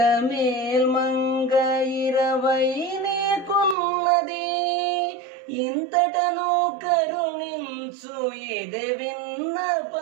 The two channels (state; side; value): drops out; left; at 3.8 s